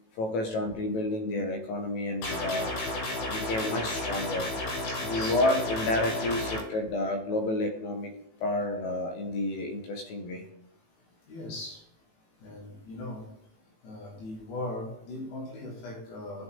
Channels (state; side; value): late; right; 18 ms